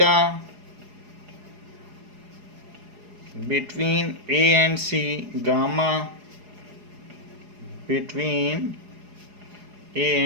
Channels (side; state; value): left; late; 4.8 ms